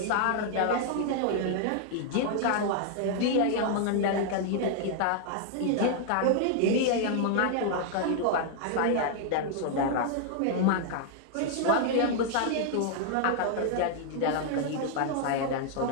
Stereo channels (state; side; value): different; both; correlation 0.00